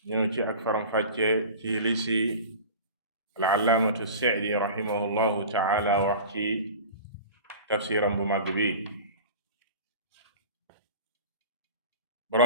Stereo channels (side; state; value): both; inverted; correlation -0.37